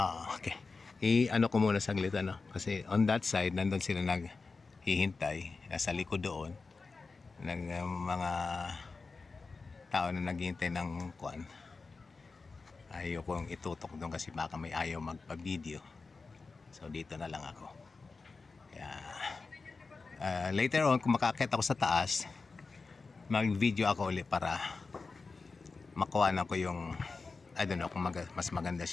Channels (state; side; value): quieter; right; 4.2 dB